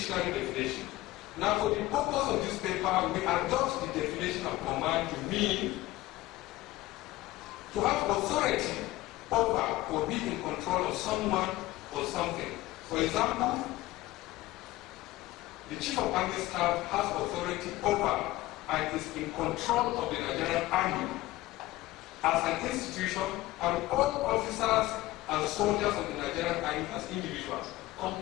definition. Now, for the purpose of this paper, we adopt the definition of command to mean to have authority over or be in control of someone or something. For example, the Chief of Army Staff has authority over and is in control of the Nigerian Army as an institution, and all officers and soldiers of the Nigerian Army as individuals come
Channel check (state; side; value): quieter; right; 17.5 dB